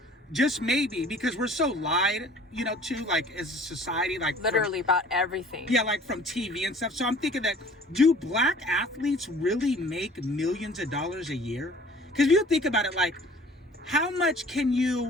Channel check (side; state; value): both; normal; correlation 0.50